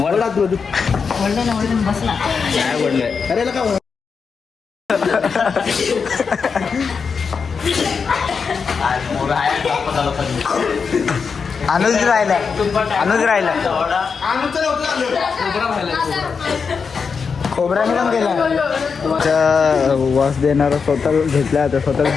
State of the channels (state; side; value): quieter; right; 5.6 dB